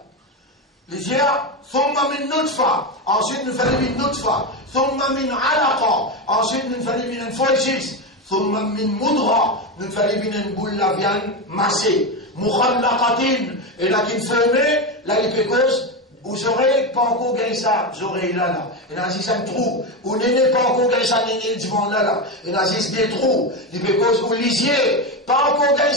Il dit là, thumma min nutfa, ensuite nous faisons min nutfa, thumma min alaqa, ensuite nous faisons min foljis, thumma min mudra, nous faisons min boule la viande massée, mukhallaqatin, et là qui formé, là il peut cause, vous aurez pas encore gagné ça, vous aurez là. Et là, si ça un trou, vous n'avez pas encore gagné ça, n'avez devant là. Et là, si des trous, il peut cause, vous lisiez, pas encore gagné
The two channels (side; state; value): both; normal; correlation 0.15